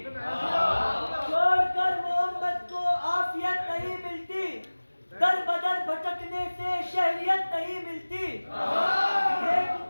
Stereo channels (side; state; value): both; inverted; correlation -1.00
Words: छोड़कर मोहम्मद को आफियत नहीं मिलती, दर बदर भटकने से शहरियत नहीं मिलती।